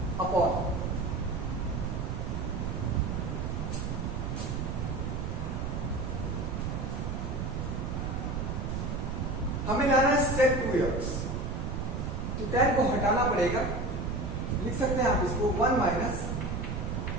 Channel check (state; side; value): noise; right; rumble, 2 dB below the sound